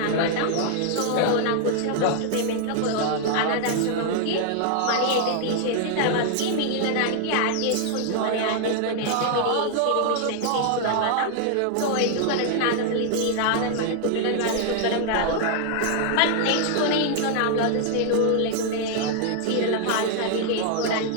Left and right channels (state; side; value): different; both; correlation 0.00